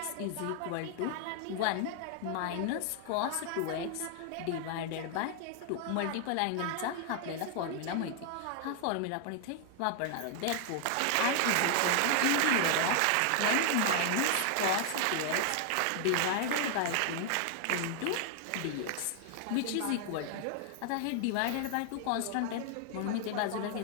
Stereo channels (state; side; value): different; both; correlation 0.00